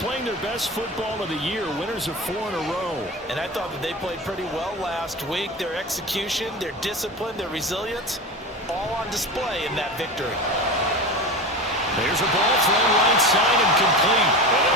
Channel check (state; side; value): normal; both; correlation 0.27